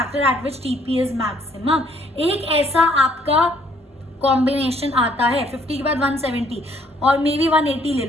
at which TP is maximum. एक ऐसा आपका कॉम्बिनेशन आता है 50 के बाद 170 और मे बी 180 ले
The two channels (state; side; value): normal; both; correlation 0.65